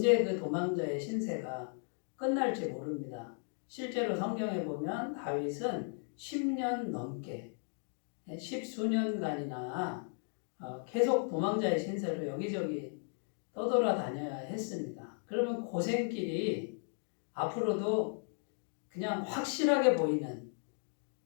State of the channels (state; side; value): silent; right; 54 dB below the other